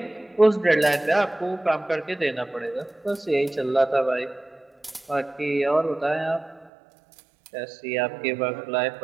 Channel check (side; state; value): left; drops out; at 6.7 s